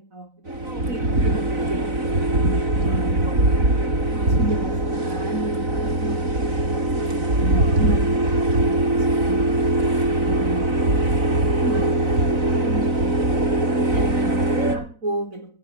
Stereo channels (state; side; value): late; left; 4.0 ms